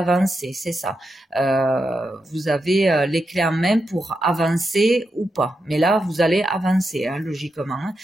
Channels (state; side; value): normal; both; correlation 0.86